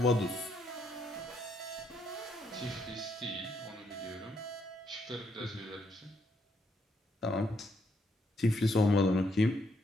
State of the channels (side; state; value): both; normal; correlation 0.74